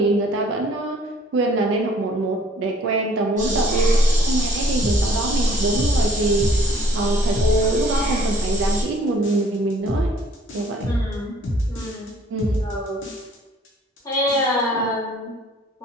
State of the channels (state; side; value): normal; both; correlation 0.56